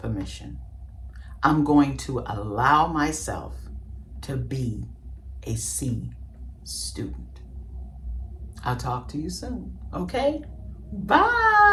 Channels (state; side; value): identical; both; correlation 1.00